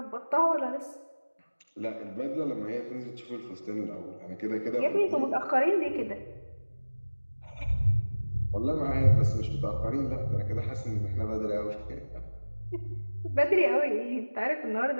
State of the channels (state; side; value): inverted; both; correlation -1.00